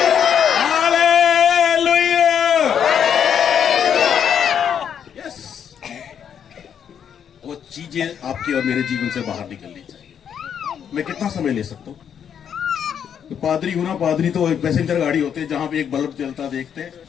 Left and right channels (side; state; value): right; quieter; 8.3 dB